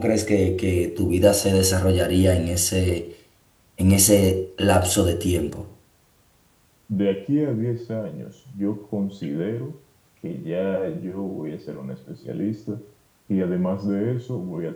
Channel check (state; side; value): identical; both; correlation 1.00